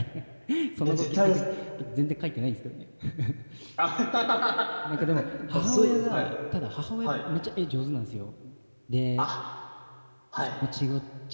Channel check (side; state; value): both; inverted; correlation -1.00